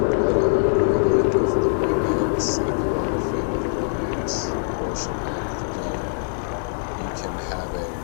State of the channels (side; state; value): right; silent; digital silence